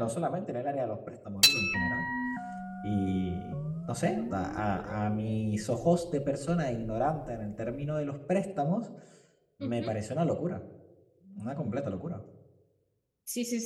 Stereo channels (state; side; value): identical; both; correlation 1.00